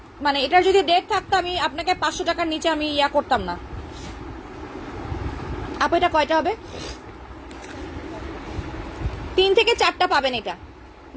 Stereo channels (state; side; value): identical; both; correlation 1.00